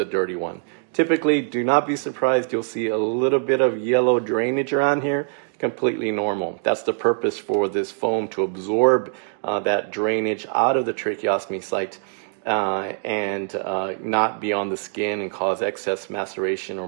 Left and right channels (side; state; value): left; silent; 60 dB below the other